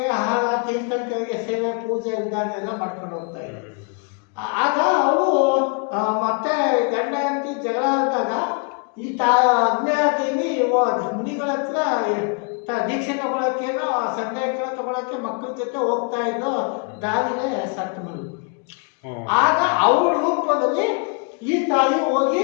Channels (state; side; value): quieter; right; 36.6 dB